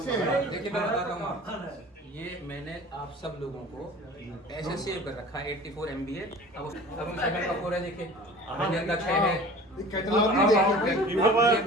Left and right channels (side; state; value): both; normal; correlation 0.42